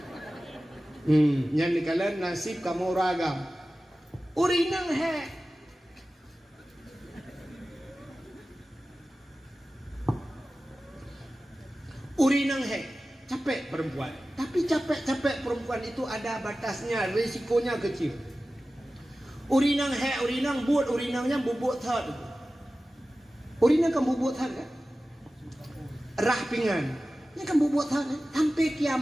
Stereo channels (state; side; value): normal; both; correlation 0.95